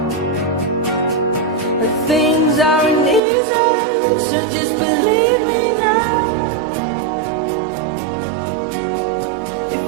Things aren't easy, so just believe me now. If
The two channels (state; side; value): drops out; left; at 3.2 s